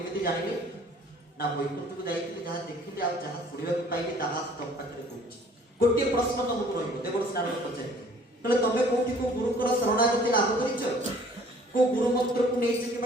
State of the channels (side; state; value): both; normal; correlation 0.54